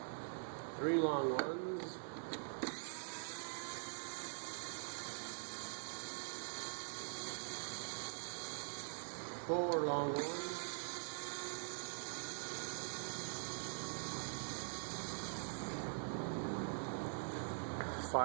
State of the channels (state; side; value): silent; left; digital silence